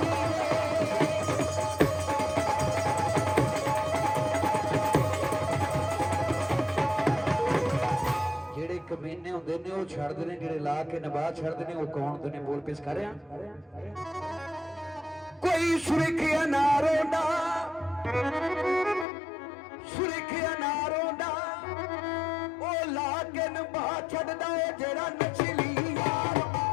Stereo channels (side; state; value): right; drops out; at 19.1 s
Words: ਜਿਹੜੇ ਕਮੀਨੇ ਹੁੰਦੇ ਨੇ ਉਹ ਛੱਡਦੇ ਨੇ, ਜਿਹੜੇ ਲਾ ਕੇ ਨਵਾਜ਼ ਛੱਡਦੇ ਨੇ ਉਹ ਕੌਣ ਹੁੰਦੇ ਨੇ? ਬੋਲ ਪੇਸ਼ ਕਰ ਰਿਹਾ। ਕੋਈ ਸੁਰਖਿਆ ਨਾਰੋਂ ਸੁਰਖਿਆ ਨਾਰੋਂ ਦਾ ਉਹ ਲਾ ਕੇ ਨਵਾ ਛੱਡਦਾ ਏ ਜਿਹੜਾ ਨਚਲੀ ਯਾਰ